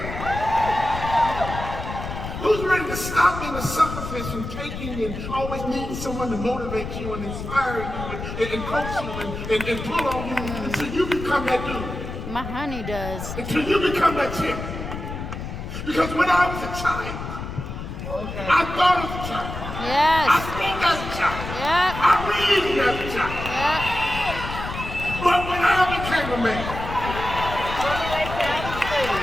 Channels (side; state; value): left; noise; rumble, 7 dB below the sound